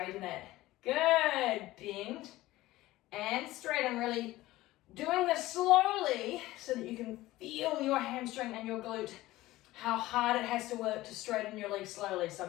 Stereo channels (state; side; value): quieter; right; 17.2 dB